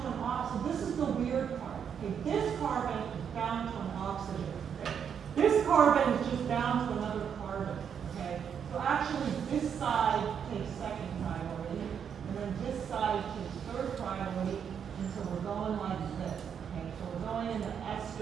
an oxygen. This is the weird part. Okay? This carbon is bound to an oxygen. Okay? This carbon is just bound to another carbon. Okay? So actually, this side takes 2nd priority, and then this side takes 3rd priority, and so we're going like this. Okay? So we're going in the S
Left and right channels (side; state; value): left; quieter; 7.7 dB